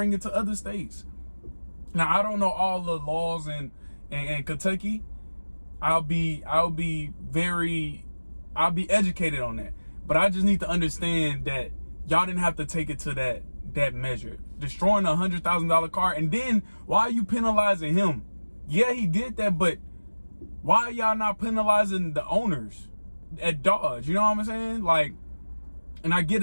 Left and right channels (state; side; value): inverted; both; correlation -1.00